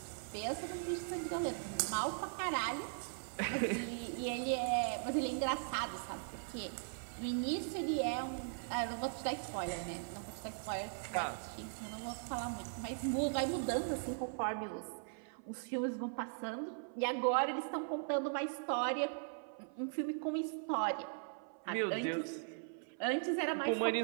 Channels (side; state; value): left; silent; 51 dB below the other